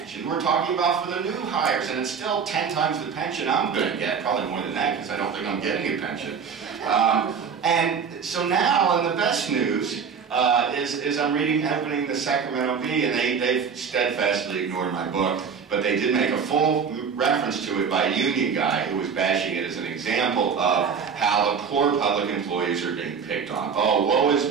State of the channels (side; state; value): left; quieter; 6.3 dB